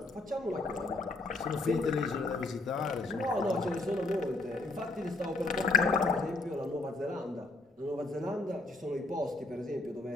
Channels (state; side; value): quieter; right; 3.1 dB